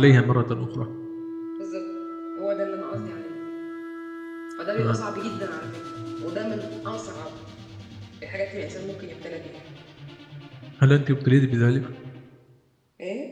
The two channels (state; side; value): identical; both; correlation 1.00